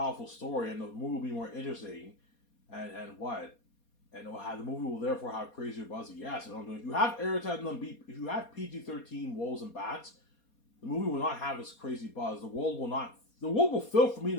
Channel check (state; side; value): late; right; 4.2 ms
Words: story, and the movie will be more interesting. And what? And it'll have, the movie will therefore have crazier buzzy. Yes, and I'm doing. If you have Aerith and them be, if you have PG-13 wolves and bats, the movie will not have this crazy buzz. The world will not. The world will feel for me and